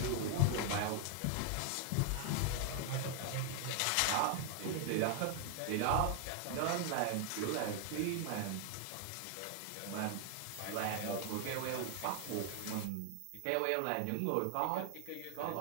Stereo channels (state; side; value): different; both; correlation 0.00